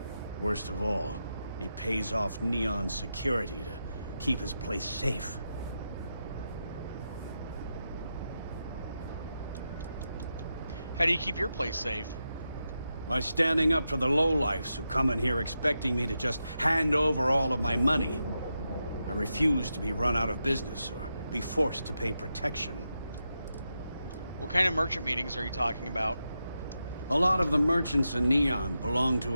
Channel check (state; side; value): inverted; both; correlation -0.88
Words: Worst of all, he pays off Neon's security to keep his place safe. How do you keep your place safe? By standing up to the lowlifes who come in here expecting me to just hand over all of my money. I refuse to be run out of business or be forced to pay protection. What kind of merchant meetings are you talking about? A lot of the merchants in Neon belong